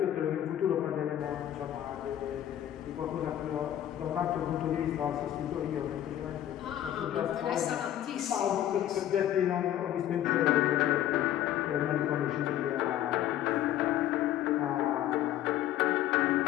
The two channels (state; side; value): quieter; right; 12.0 dB